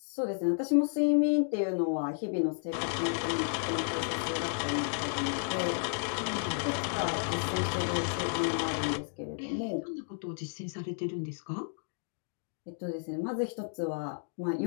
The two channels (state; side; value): silent; right; digital silence